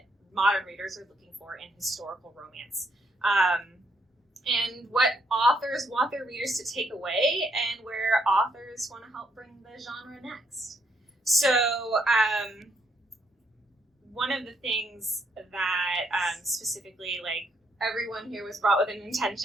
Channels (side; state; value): both; normal; correlation 0.73